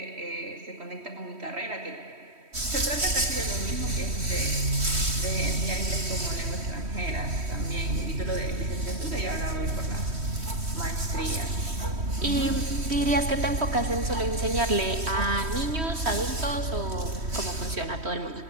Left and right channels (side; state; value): left; late; 3.1 ms